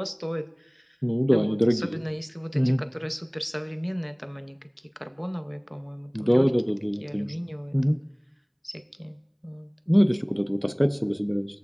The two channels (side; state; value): both; identical; correlation 1.00